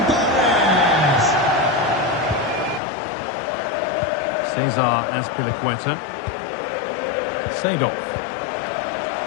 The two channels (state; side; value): drops out; right; at 2.8 s